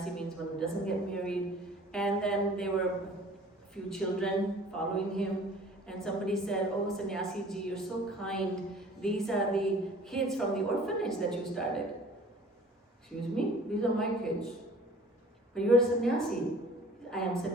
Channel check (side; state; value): both; normal; correlation 0.49